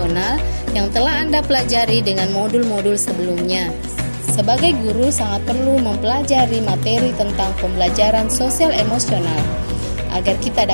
yang telah Anda pelajari dengan modul-modul sebelumnya? Sebagai guru sangat perlu mempelajari materi tentang pembelajaran sosial emosional agar kita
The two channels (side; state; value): both; inverted; correlation -1.00